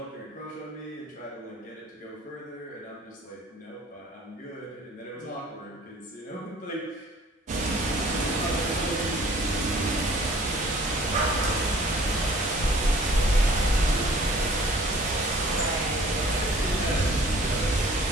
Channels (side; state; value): both; normal; correlation 0.52